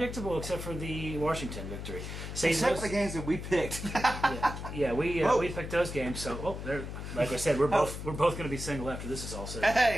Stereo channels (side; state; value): left; noise; hum, 8 dB below the sound